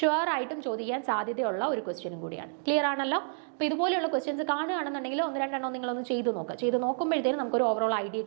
ആയിട്ടും ചോദിക്കാൻ സാധ്യതയുള്ള ഒരു ക്വസ്റ്റ്യനും കൂടിയാണ്. ക്ലിയർ ആണല്ലോ? അപ്പോൾ ഇതുപോലെയുള്ള ക്വസ്റ്റ്യൻസ് കാണുകയാണെന്നുണ്ടെങ്കിൽ 1-2 നിങ്ങളൊന്ന് ചെയ്ത് നോക്കുക. ചെയ്ത് നോക്കുമ്പോഴത്തേനും നമുക്കൊരു ഓവറോൾ ഐഡിയ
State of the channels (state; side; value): silent; left; digital silence